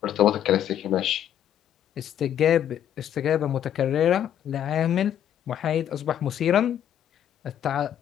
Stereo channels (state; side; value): quieter; right; 10.2 dB